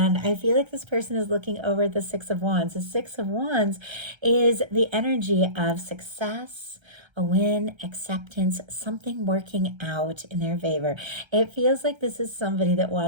I feel like this person is looking over at the Six of Wands. The Six of Wands is the energy of success, a win, acceptance, something working out in their favor. It feels like this is somebody that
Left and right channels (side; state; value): left; late; 1.3 ms